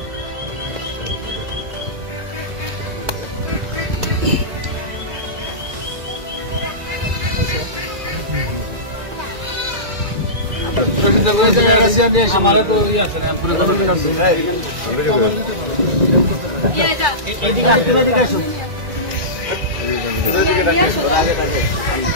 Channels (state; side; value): late; left; 1.9 ms